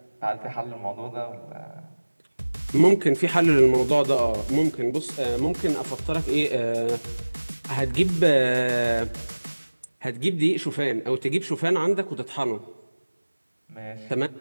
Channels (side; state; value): both; inverted; correlation -1.00